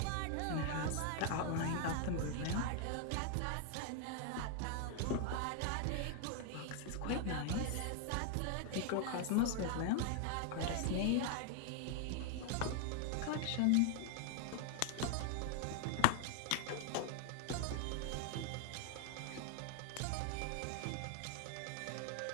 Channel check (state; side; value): different; both; correlation 0.00